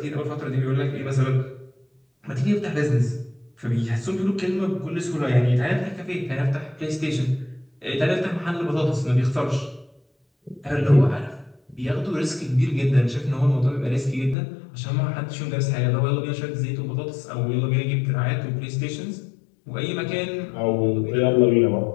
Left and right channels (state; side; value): drops out; right; at 14.4 s